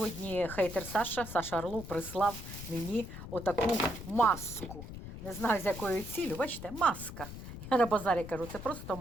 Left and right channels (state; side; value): noise; left; rumble, 11 dB below the sound